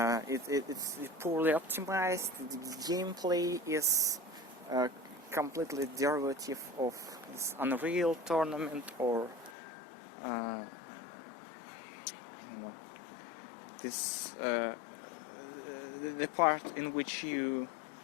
poorly optimized. The gameplay is completely derivative of this Unreal Tournament, or this the part in which you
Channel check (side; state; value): right; drops out; at 9.5 s